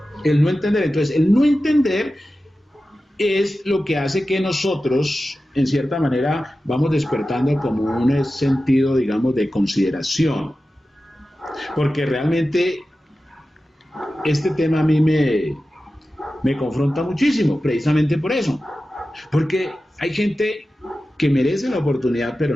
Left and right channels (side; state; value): both; normal; correlation 0.94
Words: Entonces, el no entender es lo que hace que nosotros, en cierta manera, vamos despertando como un sentido, digamos, de consideración. Porque realmente este tema a mí me confronta muchísimo, precisamente por eso. Porque hay gente que merece la oportunidad,